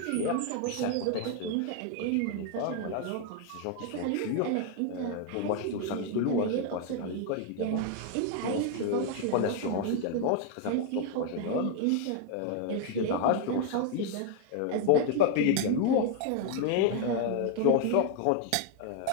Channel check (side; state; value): both; different; correlation 0.00